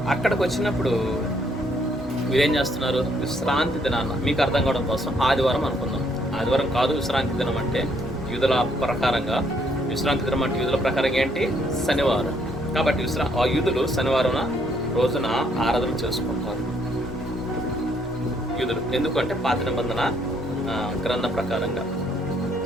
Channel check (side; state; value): both; normal; correlation 0.69